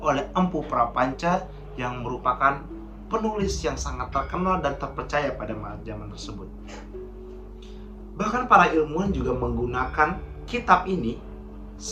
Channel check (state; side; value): identical; both; correlation 1.00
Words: Empu Prapanca yang merupakan penulis yang sangat terkenal dan terpercaya pada zaman tersebut. Bahkan para ilmuwan juga menggunakan kitab ini